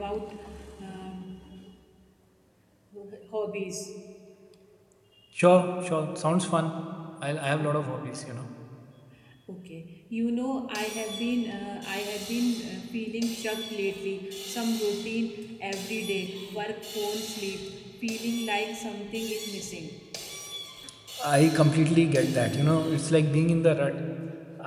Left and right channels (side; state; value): both; identical; correlation 1.00